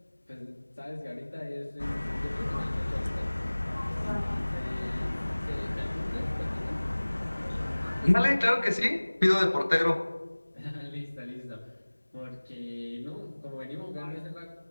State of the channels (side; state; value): both; inverted; correlation -1.00